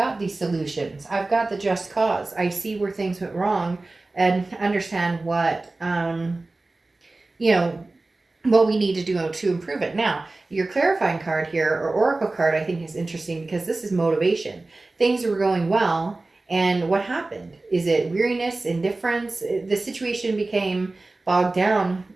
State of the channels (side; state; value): left; quieter; 3.2 dB